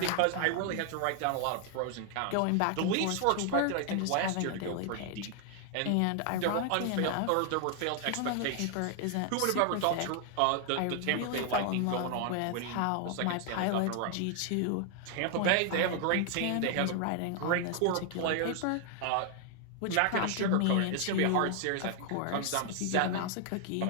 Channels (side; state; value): both; different; correlation 0.00